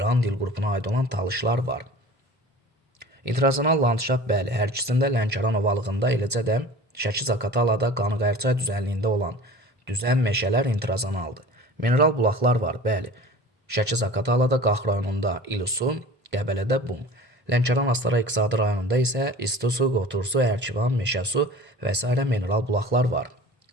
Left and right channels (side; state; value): both; normal; correlation 0.41